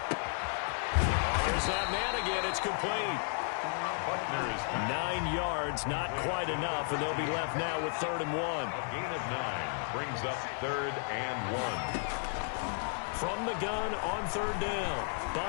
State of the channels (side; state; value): right; silent; 56 dB below the other